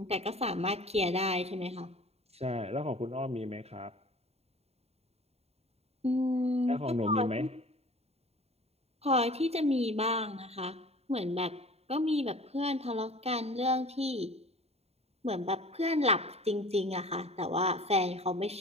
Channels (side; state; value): left; late; 0.30 ms